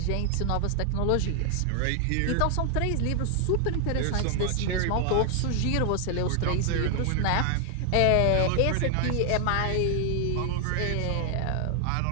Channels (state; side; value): different; both; correlation 0.00